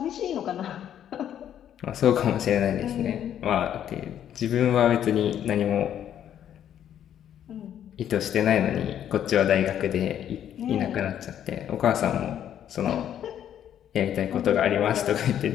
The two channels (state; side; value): quieter; right; 10.1 dB